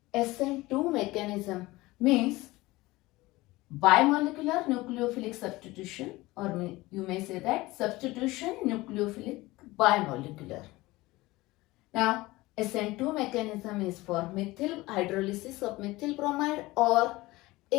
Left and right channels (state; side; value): quieter; right; 19.9 dB